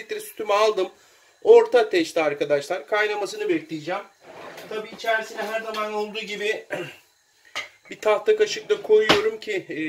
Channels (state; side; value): identical; both; correlation 1.00